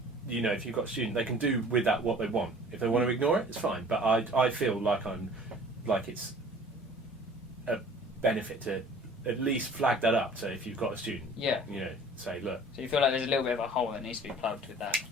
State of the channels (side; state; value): both; normal; correlation 0.48